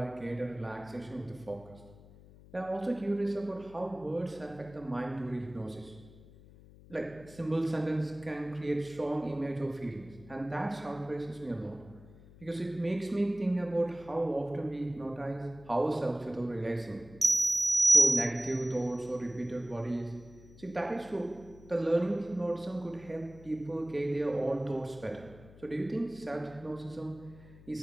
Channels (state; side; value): noise; left; hum, 21 dB below the sound